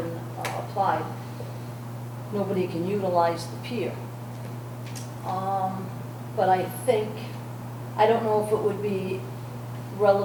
applied, nobody can utilize the pier. But I don't know if it would be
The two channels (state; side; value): identical; both; correlation 1.00